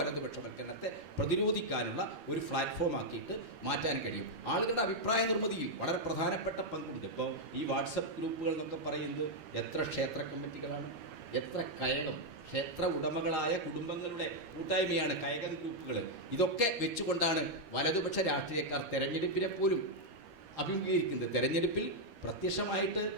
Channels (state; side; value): late; left; 13 ms